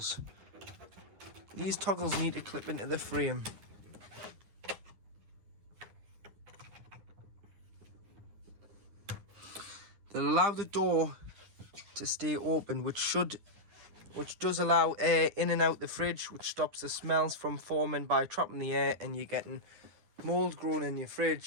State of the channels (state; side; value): late; left; 10 ms